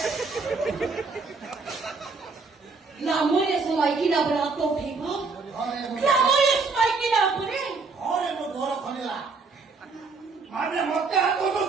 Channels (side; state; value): left; quieter; 4.3 dB